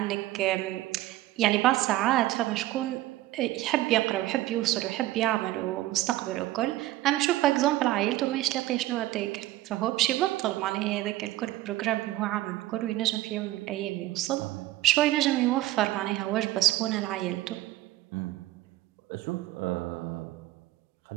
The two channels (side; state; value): left; quieter; 16.1 dB